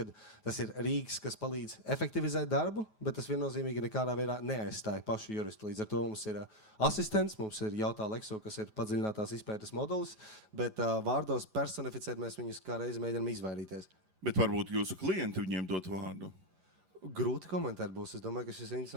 tas ir rīks, kas palīdz efektivizēt darbu, bet tas viennozīmīgi nekādā veidā neaizstāja pašu juristu. Līdz ar to mums ir asistents, mums ir Jautā Lexo, kas ir padziļinātās izpētes modulis, bet vārdos personificēt mēs viņus kā reizi mēģinām izvairīties. Bet varbūt jūsu klienti viņiem dot vārdu. Grūti komentēt būs. Es domāju, ka šis ir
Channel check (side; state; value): left; late; 5.0 ms